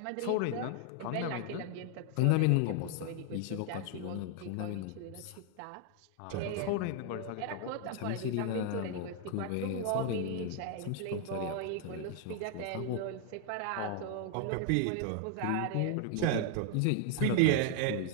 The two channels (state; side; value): different; both; correlation 0.00